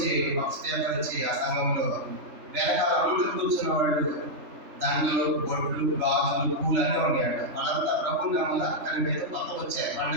ఒక స్టేపర్ వచ్చి ఆ సంఘంలో వెనకాల అందరూ కూర్చున్న వాళ్ళు దండలు, బొట్లు, గాజులు, పూలు అన్నీ ఉన్నాయంట. వాళ్ళంతా ప్రభుని నమ్మల, కనుక ఏదో కొత్త వచ్చాయి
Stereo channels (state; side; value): late; left; 3.4 ms